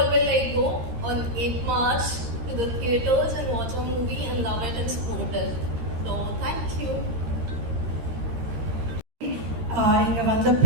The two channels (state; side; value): late; left; 13 ms